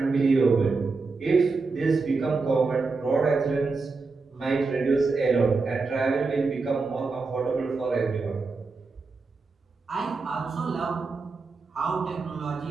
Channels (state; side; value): quieter; left; 4.1 dB